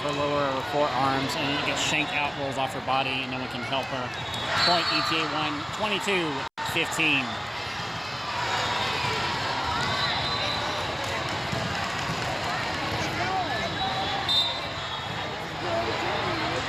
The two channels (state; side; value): identical; both; correlation 1.00